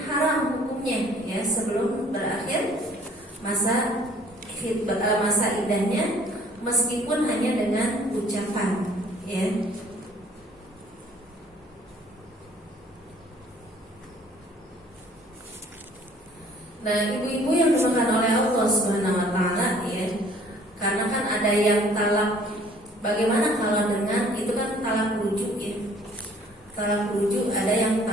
haram hukumnya, ya, sebelum berakhir masa khitbah, masa idahnya, meskipun hanya dengan ucapan, ya. Nah, ibu-ibu yang dimakan oleh Allah Subhanahu Wa Taala, ya, karena kan ada yang talak. Bagaimana kalau dengan itu kan talak rujuk, ya. Talak rujuk, ada yang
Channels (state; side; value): normal; both; correlation 0.56